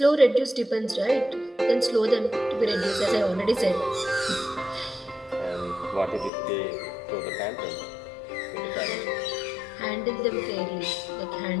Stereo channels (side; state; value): right; drops out; at 6.3 s